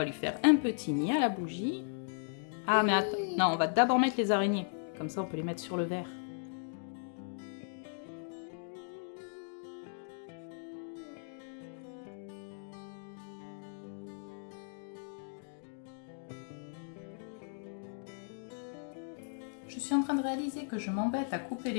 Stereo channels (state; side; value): silent; right; digital silence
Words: lui faire un petit nid à la bougie. Ah, mais attends. Non, on va d'abord mettre les araignées. Comme ça, on peut les mettre sur le verre. Je suis en train de réaliser que je m'embête à couper